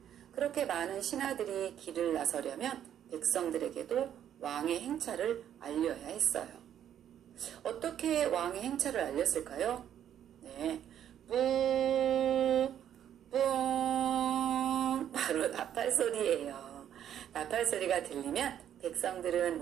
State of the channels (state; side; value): quieter; left; 10.1 dB